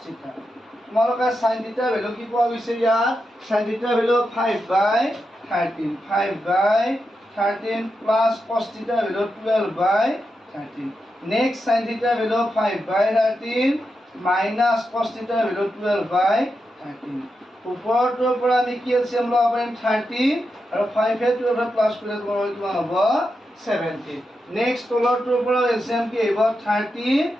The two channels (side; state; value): both; normal; correlation 0.87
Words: θ তোমালোকে sin θ ভ্যালু কি পোৱা গৈছে ইয়াত sin θ value 5/13 plus cos θ value 12/13 next sin θ value 5/13 minus cos θ value 12/13 ওপৰটোৰ পৰা আমি কি এলচিয়াম ল'ব পাৰিম 30 আৰু 5 এ 12 প্লাস কৰিলে তোমাৰ কিমান হ'ব 70 নেক্সট তলৰটোৰ পৰা এলচিয়াম কি আহিব 30